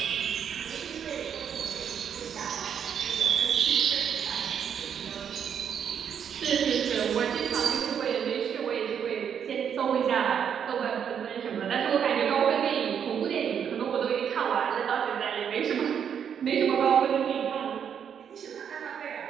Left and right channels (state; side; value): quieter; left; 8.0 dB